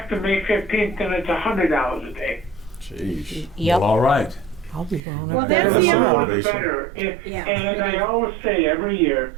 May 15th, then it's $100 a day. Jeez. Yep. All right. I'll be going. Well, over that's there. the The other more one. the better. Yeah. And I always say every year,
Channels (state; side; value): drops out; left; at 5.0 s